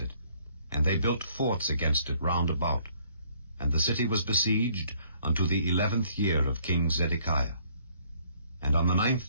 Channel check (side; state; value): both; inverted; correlation -0.63